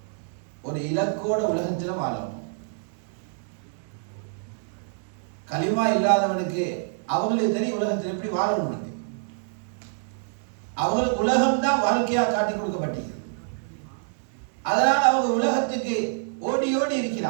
ஒரு இலக்கோட உலகத்தில் வாழணும். கலிமா இல்லாதவனுக்கு அவங்களுக்கு தெரியும் உலகத்தில் எப்படி வாழணும். அவங்களுக்கு உலகம் தான் வாழ்க்கையா காட்டி கொடுக்கப்பட்டது. அதனால் அவங்க உலகத்துக்கு ஓடி ஓடி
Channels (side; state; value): left; silent; digital silence